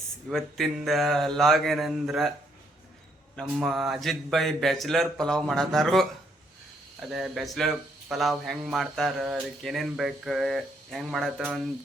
ಇವತ್ತಿಂದ log ಏನಂದ್ರೆ ನಮ್ಮ ಅಜಿತ್ ಭಾಯ್ ಬ್ಯಾಚುಲರ್ ಪಲಾವ್ ಮಾಡತ್ತಾರು. ಅದೇ ಬ್ಯಾಚುಲರ್ ಪಲಾವ್ ಹೆಂಗೆ ಮಾಡ್ತಾರೆ, ಅದಕ್ಕೆ ಏನೇನು ಬೇಕು, ಹೆಂಗೆ ಮಾಡತ್ತ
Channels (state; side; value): normal; both; correlation 0.71